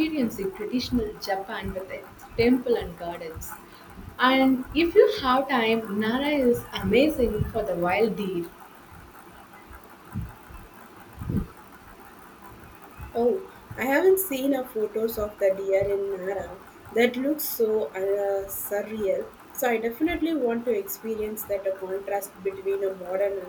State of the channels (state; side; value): identical; both; correlation 1.00